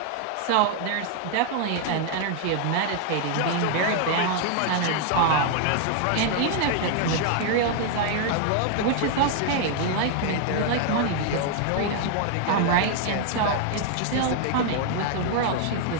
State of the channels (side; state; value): both; different; correlation 0.00